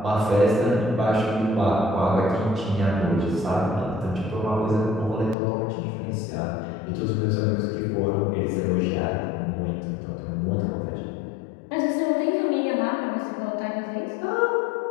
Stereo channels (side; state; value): right; drops out; at 5.4 s